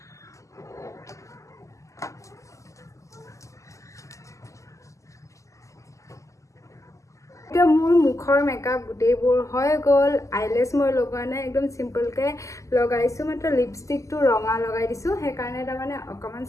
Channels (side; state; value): right; late; 0.16 ms